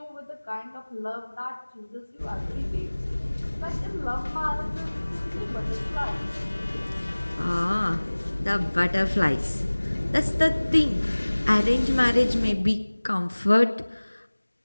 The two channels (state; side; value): inverted; both; correlation -1.00